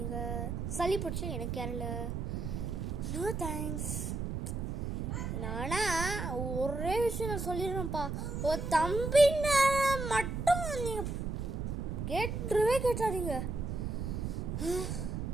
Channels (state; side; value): noise; right; rumble, 3 dB below the sound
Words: சளி பிடிச்சா எனக்கு யாரும் இல்லை. No thanks. நானா ஒரே விஷயம் நான் சொல்லிடுறேன்ப்பா, ஒரு தம்பின்னு மட்டும் நீங்கள் கேட்டாதீங்க.